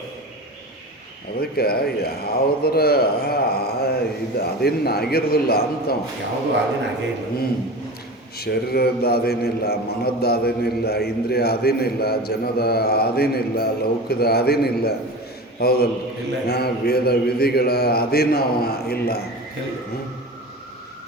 ಅದಕ್ಕೆ ಯಾವುದರ ಇದು ಅದೇನು ಆಗಿರೋದಿಲ್ಲ ಅಂತ. ಯಾವುದು ಅದೇನು ಆಗೇ ಇಲ್ಲ. ಶರೀರದ ಅದೇನಿಲ್ಲ, ಮನದ ಅದೇನಿಲ್ಲ, ಇಂದ್ರಿಯ ಅದೇನಿಲ್ಲ, ಜನದ ಅದೇನಿಲ್ಲ, ಲೌಕದ ಅದೇನಿಲ್ಲ. ಹೌದಲ್ಲ? ವೇದ ವಿಧಿಗಳ ಅಧೀನ ಇಲ್ಲ.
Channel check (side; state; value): both; normal; correlation 0.30